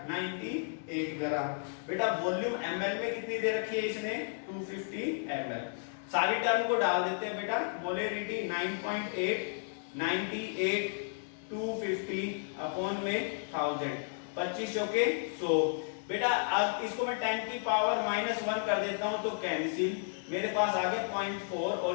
98 ग्राम। बेटा वॉल्यूम ml में कितनी दे रखी है इसने 250 ml। सारी टर्म को डाल देते हैं बेटा मोलेरिटी 9.8 98 250 अपॉन में 1000, 2500 के 100, बेटा अब इसको मैं 10 की पावर -1 कर देता हूं तो कैंसिल, मेरे पास आ गया 0.4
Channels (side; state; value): right; silent; digital silence